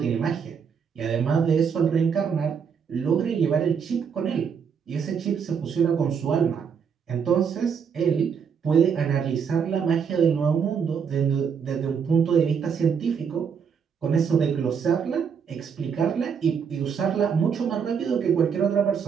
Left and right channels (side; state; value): left; quieter; 6.8 dB